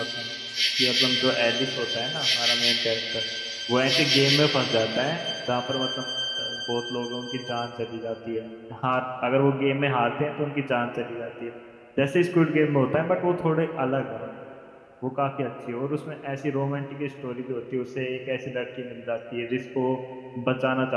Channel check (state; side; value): identical; both; correlation 1.00